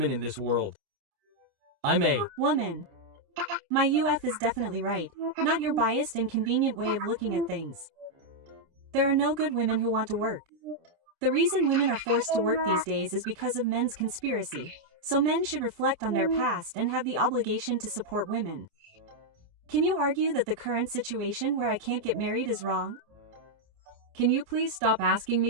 in this world. I'm a woman. My UF is definitely right, not your biased and convenient way of looking at things. There are no good women who want to work. The reason women are forced to work these days is because of men's conspiracy, so men should reflect on their past and have the obligation to support women. Can you argue that the current situation where I can't get married is wrong? Can you please stop asking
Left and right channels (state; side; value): late; left; 27 ms